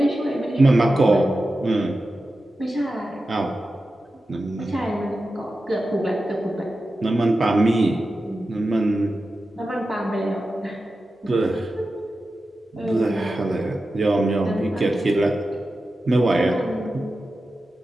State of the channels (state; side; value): normal; both; correlation 0.92